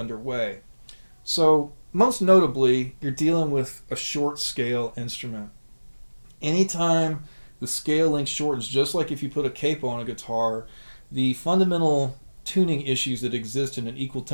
So most notably, you're dealing with a short scale instrument. Anytime the scale length shortens, just like if you put a capo on a guitar, the fundamental tuning issues that exist in an equal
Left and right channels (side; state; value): both; inverted; correlation -1.00